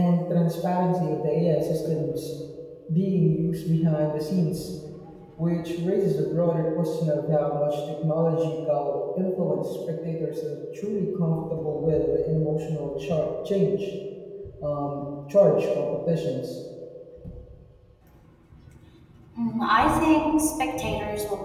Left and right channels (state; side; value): identical; both; correlation 1.00